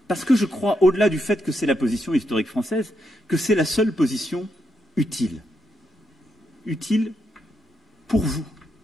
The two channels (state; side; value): normal; both; correlation 0.81